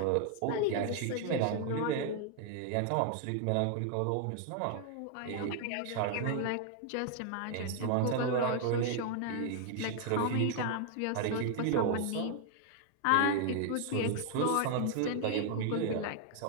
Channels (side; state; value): both; different; correlation 0.00